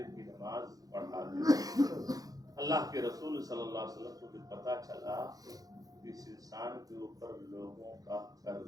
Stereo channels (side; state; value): left; late; 0.18 ms